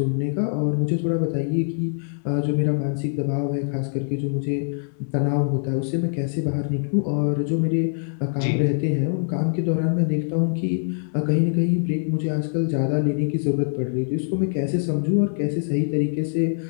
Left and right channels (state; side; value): silent; right; 61 dB below the other